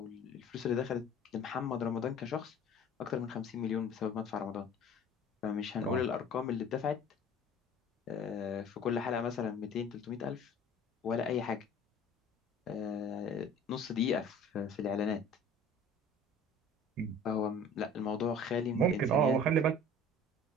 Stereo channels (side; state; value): both; normal; correlation 0.45